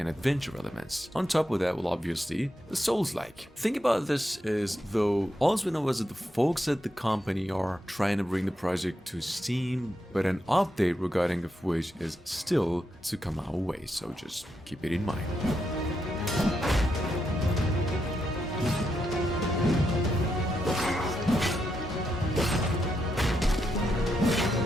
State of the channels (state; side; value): normal; both; correlation 0.83